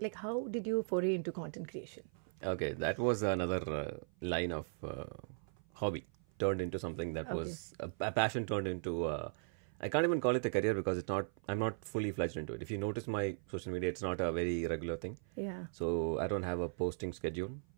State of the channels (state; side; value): silent; left; 52 dB below the other